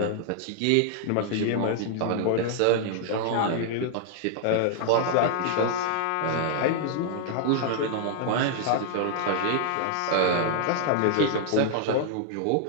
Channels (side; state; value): both; different; correlation 0.00